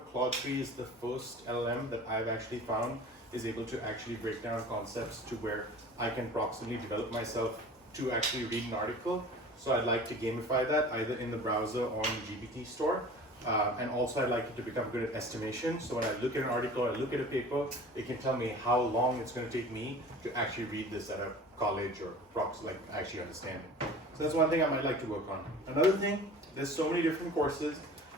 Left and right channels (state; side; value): normal; both; correlation 0.42